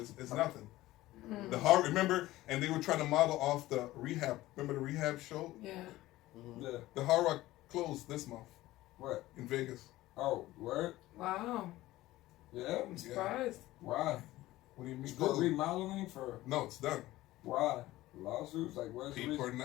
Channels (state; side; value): quieter; right; 16.8 dB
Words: it's nothing. The horror, remember, and they were trying to model off the rehab. Remember the rehab show? Yeah. Yeah. The Hard Rock closed this month What? in Vegas. Oh, word? Wow. Yeah. I'm surprised. Why? What do you mean? Still remodeling for No, it's done. why? Lawsuits? Like where's the People are reason?